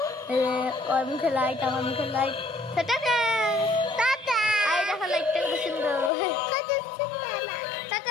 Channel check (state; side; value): drops out; right; at 6.1 s